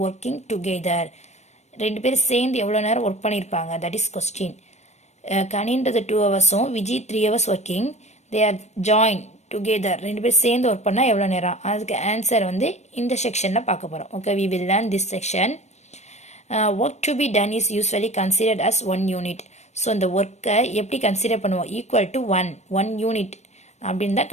working together? ரெண்டு பேரும் சேர்ந்து எவ்வளோ நேரம் work பண்ணியிருப்பாங்க, that is question. கனின்றது 2 ஹவர்ஸும் Viji 3 hours working, they are join together. ரெண்டு பேர் சேர்ந்து ஒர்க் பண்ணால் எவ்வளோ நேரம்? அதுக்கு ஆன்சர் வந்து இந்த செக்ஷனில் பார்க்க போகிறோம். Okay, we will learn this section. Work to be done is usually considered as 1 unit. So இந்த ஒர்க்கை எப்படி கன்சிடர் பண்ணுவோம்? ஈக்குவல் டு 1 யூனிட் அப்படின்னு தான்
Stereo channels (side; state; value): right; late; 0.33 ms